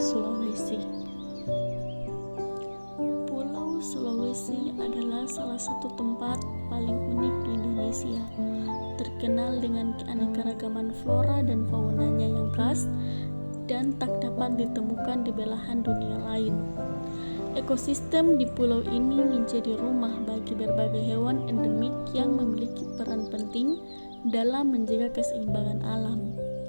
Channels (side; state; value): both; inverted; correlation -1.00